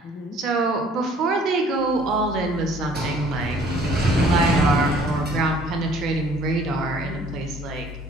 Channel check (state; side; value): normal; both; correlation 0.56